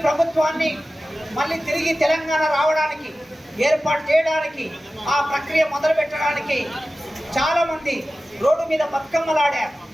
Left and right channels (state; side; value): normal; both; correlation 0.95